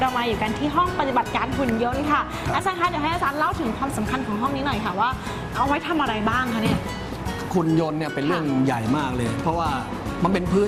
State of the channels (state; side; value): identical; both; correlation 1.00